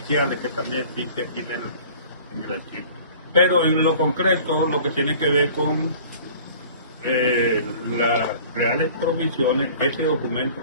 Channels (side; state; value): both; inverted; correlation -0.47